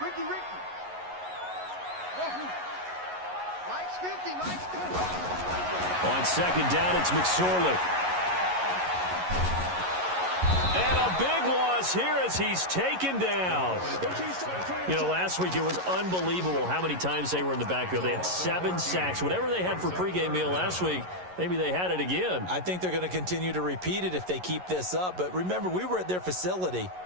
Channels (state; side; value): late; left; 11 ms